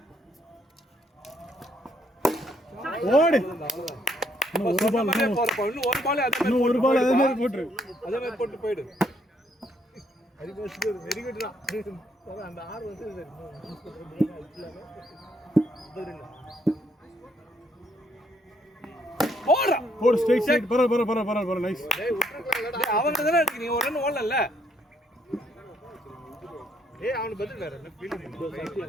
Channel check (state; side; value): normal; both; correlation 0.70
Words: ஓடு. இன்னும் ஒரு பால் அதே மாதிரி போட்டு. அதே மாதிரி போட்டு போய்டு. வெரி குட்ரா. அந்த ஆர் வந்து போடுறா. போடு ஸ்ட்ரைட் பர நைஸ். டேய் விட்டுறலாம். அவங்க தான இருக்கு. நீ ஒரு ரன் ஓடல. ஏய் அவன பதில் வேற என்ன ஃபீல்ட்